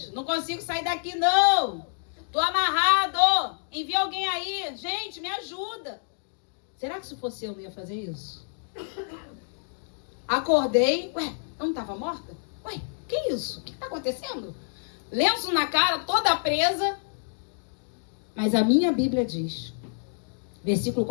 não consigo sair daqui não. Tô amarrado. Envia alguém aí. Gente, me ajuda. Será que se fosse eu não ia fazer isso? Acordei. Ué, eu não estava morta? Ué, que isso? O que está acontecendo? Lenço na cara, toda presa. Mas a minha Bíblia diz, versículo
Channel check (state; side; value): silent; right; digital silence